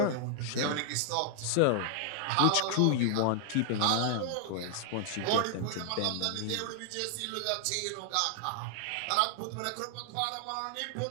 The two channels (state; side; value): different; both; correlation 0.00